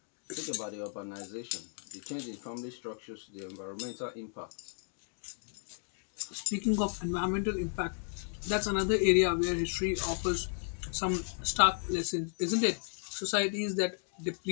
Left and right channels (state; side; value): silent; right; 55 dB below the other